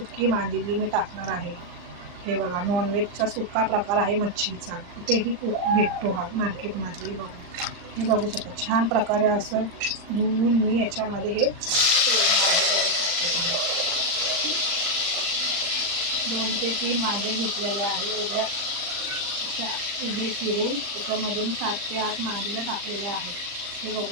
मांदेली मी टाकणार आहे. हे बघा, नॉनव्हेजचा सुका प्रकार आहे मच्छीचा, कुठेही भेटतो हा मार्केटमध्ये. बघा, हे बघू शकता छान प्रकारे असं धुवून मी याच्यामध्ये हे सोडणार आहे. बघू शकता तुम्ही, 2 ते 3 वांगे घेतलेले आहे उभ्या उभे चिरून. त्याच्यामध्ये मी 7 ते 8 मांदेल्या टाकलेल्या आहेत. हे बघू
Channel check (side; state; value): left; late; 40 ms